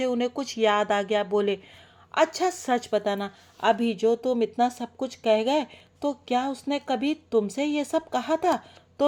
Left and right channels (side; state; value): both; identical; correlation 1.00